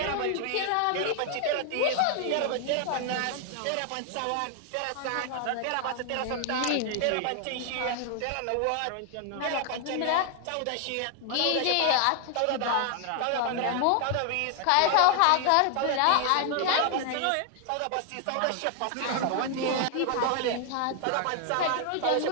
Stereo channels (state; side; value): different; both; correlation 0.00